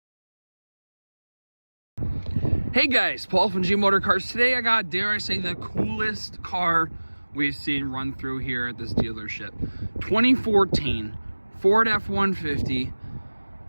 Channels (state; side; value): inverted; both; correlation -1.00